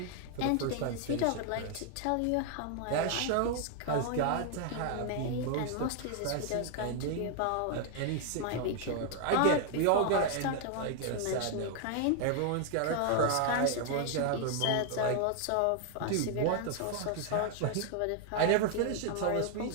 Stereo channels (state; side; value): different; both; correlation 0.00